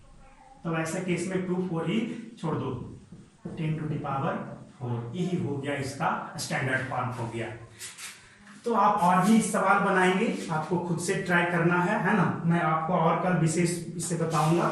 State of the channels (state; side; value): identical; both; correlation 1.00